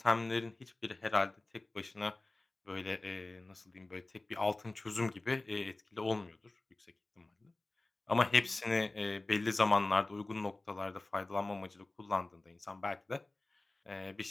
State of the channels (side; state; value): right; quieter; 3.0 dB